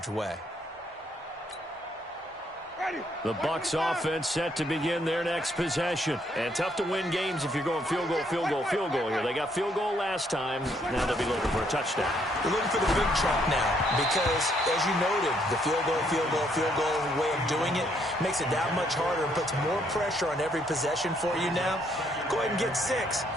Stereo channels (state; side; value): normal; both; correlation 0.70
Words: way. The Bucs offense set to begin their next possession. And tough to win games if you're going field goal here. They got field goal last time. Now they'll be looking for a touchdown. They're looking for the big chunk now because, as you noted, the field goal way of doing it makes it that much harder and puts more pressure on every possession for you now. Go ahead and get 6